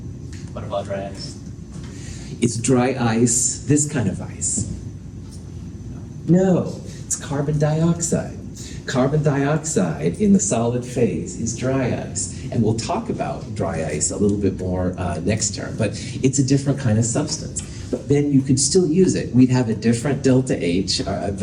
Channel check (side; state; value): both; identical; correlation 1.00